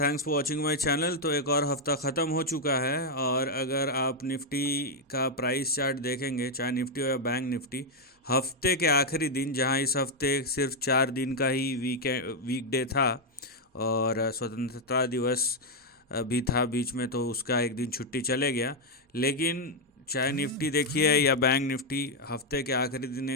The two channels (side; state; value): both; normal; correlation 0.01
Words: for watching my channel. तो एक और हफ्ता ख़त्म हो चुका है और अगर आप निफ्टी का प्राइस चार्ट देखेंगे, चाहे निफ्टी हो या बैंक निफ्टी, हफ्ते के आखिरी दिन, जहां इस हफ्ते सिर्फ 4 दिन का ही वीकडे था और स्वतंत्रता दिवस भी था बीच में, तो उसका एक दिन छुट्टी चले गया। लेकिन चाहे निफ्टी देखिए या बैंक निफ्टी, हफ्ते के आखिरी दिन